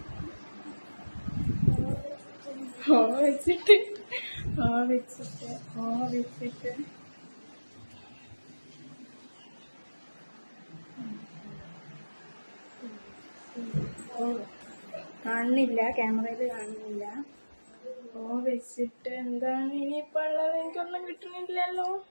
വെച്ചിട്ട് കാണുന്നില്ല, ക്യാമറയിൽ കാണുന്നില്ല. വെച്ചിട്ട് എന്താണ് ഇനിയിപ്പോ ഉള്ളത്? എനിക്കൊന്നും കിട്ടുന്നില്ലല്ലോ.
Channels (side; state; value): both; inverted; correlation -1.00